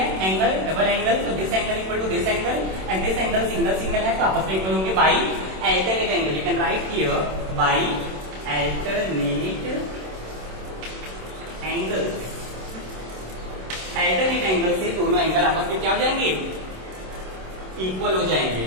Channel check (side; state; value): left; late; 27 ms